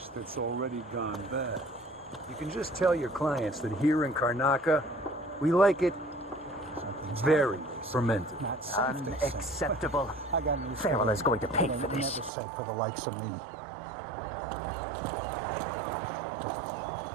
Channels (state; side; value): drops out; left; at 12.3 s